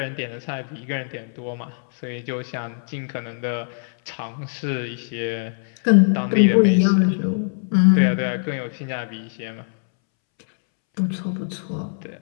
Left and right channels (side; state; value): right; silent; 64 dB below the other